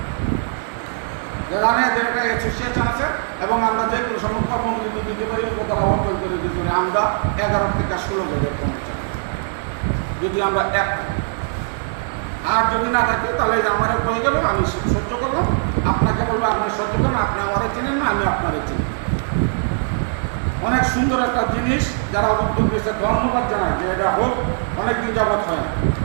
যে একটা অ্যাসোসিয়েশন আছে এবং আমরা যে কোনো সময় কর্মবিরতি দিতে পারি, উপতলা অর্জন করে দিতে পারি। আমরা 11 থেকে 16 জনের কর্মচারী যদি আমরা এক, আর যদি না থাকে তাহলে আমার হয়ে গেল, আমি সহ্য করলাম, আপনাকে বলবো আপনি সহ্য করুন, আপনি আমারে চিনেন না, আমি আপনারে চিনি। অনেক সুন্দর একটা জিনিস, যারা উদ্যোগ দিয়েছে ধন্যবাদ জানায় যে এটা হোক, অনেকদিন যাবৎ হয় না।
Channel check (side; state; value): left; silent; digital silence